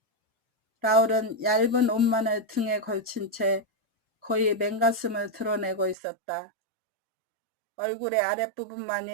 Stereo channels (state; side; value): drops out; left; at 6.0 s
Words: 라울은 얇은 옷만을 등에 걸친 채 거의 맨가슴을 드러내고 있었다. 얼굴의